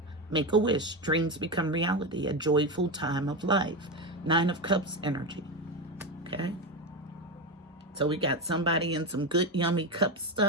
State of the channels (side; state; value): both; normal; correlation 0.15